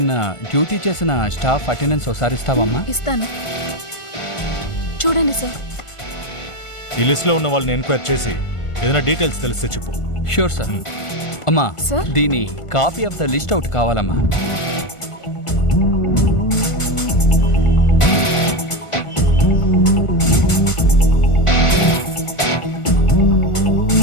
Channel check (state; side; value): late; right; 1.5 ms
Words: డ్యూటీ చేసిన స్టాఫ్ అటెండెన్స్ ఒకసారి ఇస్తావమ్మా? ఇస్తాను. చూడండి సార్. ఈ లిస్ట్లో ఉన్న వాళ్ళని ఎంక్వైరీ చేసి ఏదైనా డీటెయిల్స్ తెలిస్తే చెప్పు. Sure sir. అమ్మా దీని copy of the list out కావాలమ్మా.